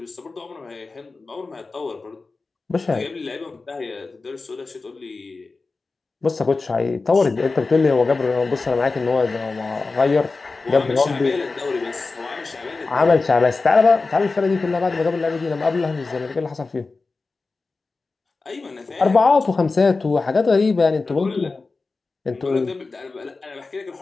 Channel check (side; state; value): right; quieter; 3.9 dB